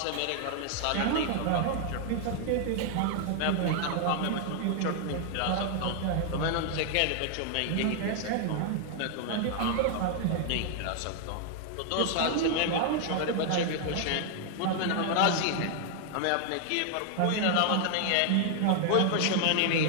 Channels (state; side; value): different; both; correlation 0.00